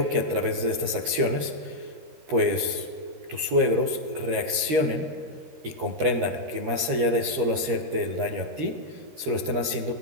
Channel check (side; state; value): left; late; 13 ms